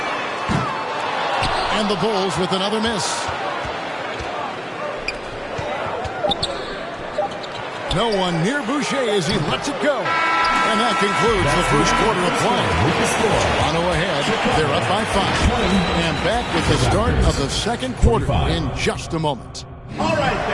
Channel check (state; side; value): identical; both; correlation 1.00